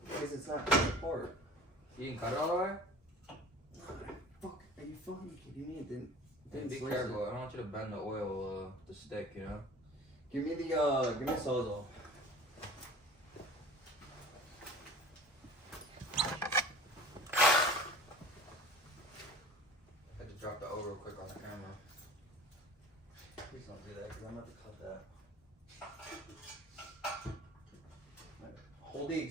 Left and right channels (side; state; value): both; normal; correlation 0.41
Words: Because it's not coming apart. You didn't cut it all the way? Fuck, are you fucking kidding me? It didn't Be slice careful. it. I don't want you to bend the oil, the stick, Give me a Sawzall. I had to drop the O real quick on the camera. Please don't do that because I'm about to cut that. Hold the